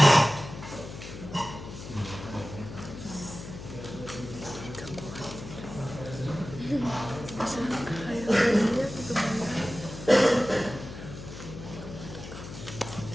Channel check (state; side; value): noise; left; hum, 11 dB below the sound